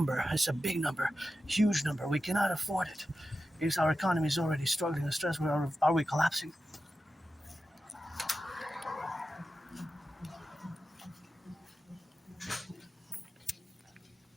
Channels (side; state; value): both; normal; correlation 0.92